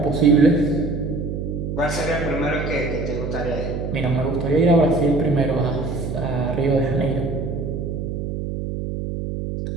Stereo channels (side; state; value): right; noise; hum, 4 dB below the sound